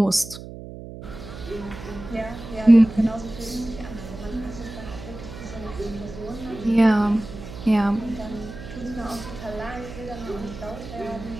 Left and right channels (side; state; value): right; noise; hum, 12 dB below the sound